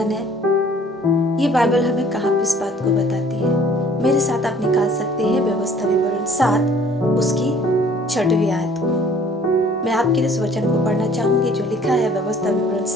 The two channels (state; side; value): normal; both; correlation 0.55